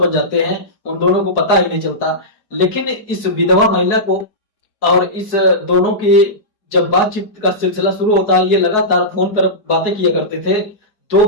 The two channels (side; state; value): right; late; 4.7 ms